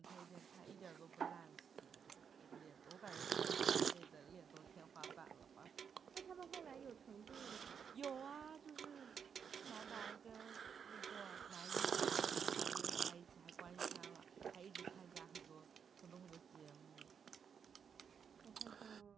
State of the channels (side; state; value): left; quieter; 7.0 dB